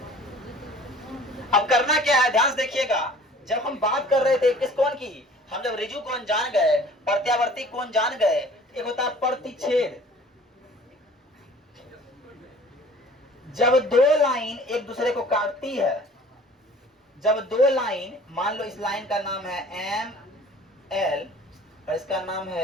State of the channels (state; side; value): normal; both; correlation 0.49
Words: अब करना क्या है, ध्यान से देखिएगा। जब हम बात कर रहे थे किस कोण की, हम जब रिजु कोण जान गए, प्रत्यावर्ती कोण जान गए, एक होता है प्रतिच्छेद। जब दो लाइन एक दूसरे को काटती है, जब दो लाइन, मान लो इस लाइन का नाम है एम एल और इसका नाम